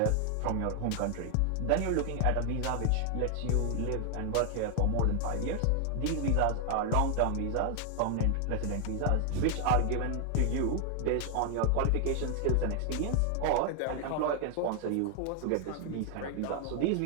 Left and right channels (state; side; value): different; both; correlation 0.00